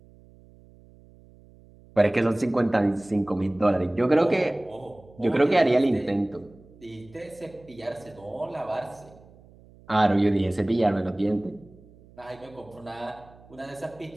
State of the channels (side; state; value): right; noise; hum, 25 dB below the sound